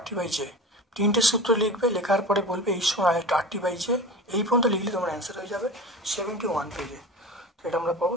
3টে সূত্র লিখবে, লেখার পরে বলবে H সমান RT/J। এই পর্যন্ত লিখলে তোমার অ্যান্সার হয়ে যাবে 71 পেজে। এটা আমরা পাবো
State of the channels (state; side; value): normal; both; correlation 0.33